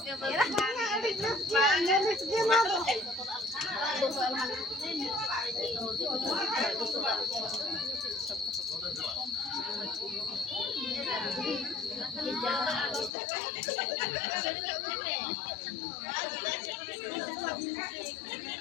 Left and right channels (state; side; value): drops out; right; at 13.1 s